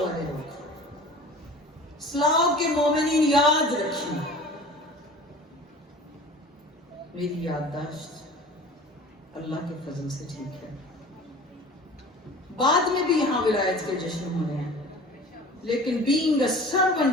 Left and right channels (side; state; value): both; normal; correlation 0.41